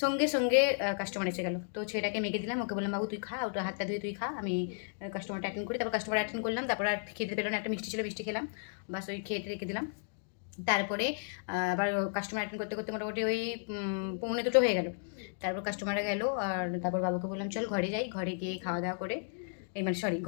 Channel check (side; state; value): right; silent; digital silence